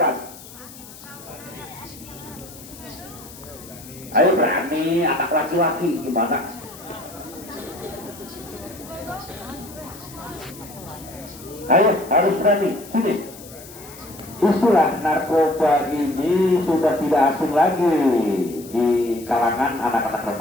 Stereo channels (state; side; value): noise; left; hiss, 18 dB below the sound